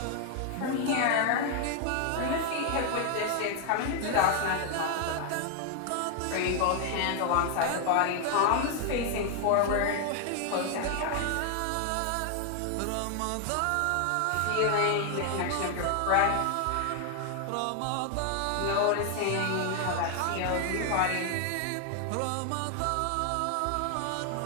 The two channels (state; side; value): different; both; correlation 0.00